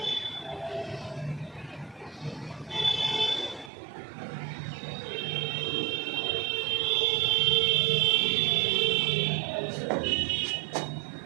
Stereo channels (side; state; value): left; drops out; at 3.7 s